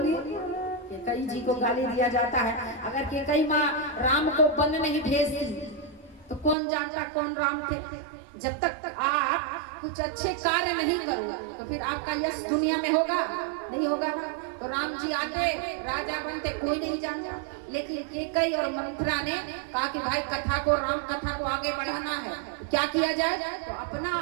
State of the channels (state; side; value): drops out; left; at 6.6 s